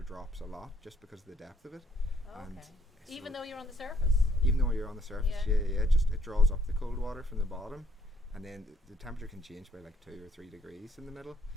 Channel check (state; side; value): normal; both; correlation 0.68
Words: drops a lot just because of the depth of it. Oh, And okay. so Even though you're on the surface. even though you're on the surface, Yeah. it draws up the cold water from the bottom, and then the temperature can change by like 2 or 3 degrees in the middle.